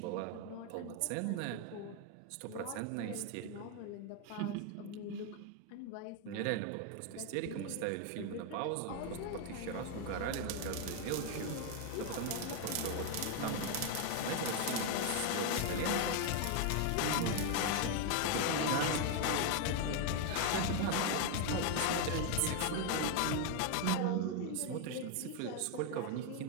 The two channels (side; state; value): both; different; correlation 0.01